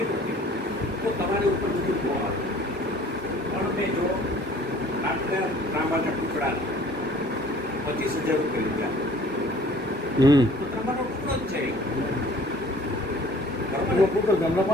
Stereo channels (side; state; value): both; normal; correlation 0.52